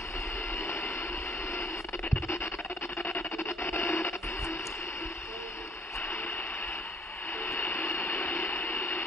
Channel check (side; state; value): both; normal; correlation 0.59